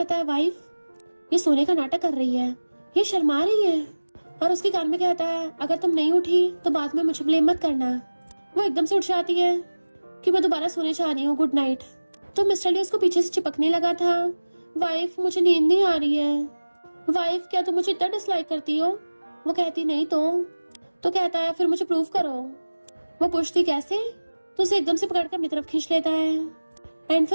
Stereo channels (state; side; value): inverted; both; correlation -1.00